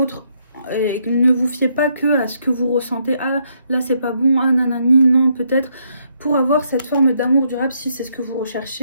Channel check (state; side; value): inverted; both; correlation -0.74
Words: Et ne vous fiez pas que à ce que vous ressentez. Ah, là c'est pas bon, ah nanani, non, peut-être. Pour avoir cette forme d'amour durable, si c'est ce que vous